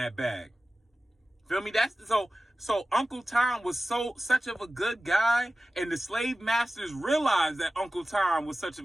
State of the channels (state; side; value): normal; both; correlation 0.96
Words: bag. Feel me? So Uncle Tom was such of a good guy, and the slave masters realized that Uncle Tom was such